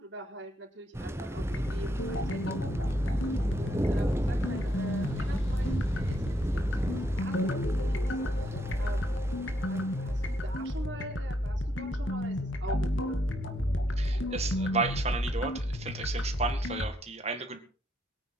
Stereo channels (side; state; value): both; normal; correlation 0.75